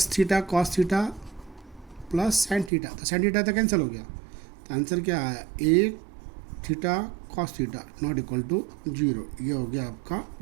theta cos theta plus sine theta. तो साइन थीटा तो कैंसिल हो गया. तो आंसर क्या आया a theta cos theta not equal to 0। ये हो गया आपका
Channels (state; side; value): drops out; left; at 2.7 s